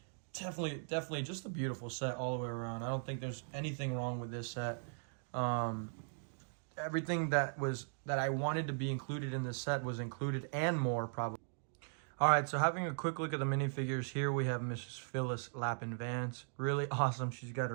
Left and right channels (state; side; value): silent; left; digital silence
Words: definitely just a beautiful set all the way around. I don't think there's anything wrong with this set. Everything that I wanted to be included in this set was included and more probably. All right, so having a quick look at the minifigures here, we have Mrs. Phyllis Lappin Vance. Really awesome. She's got